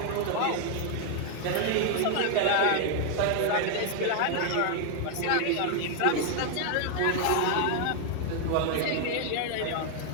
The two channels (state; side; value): different; both; correlation 0.00